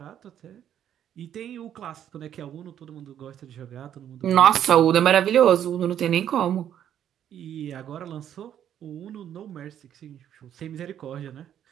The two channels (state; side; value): quieter; left; 10.1 dB